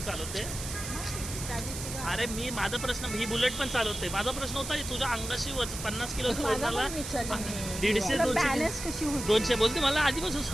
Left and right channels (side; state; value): right; noise; hiss, 8 dB below the sound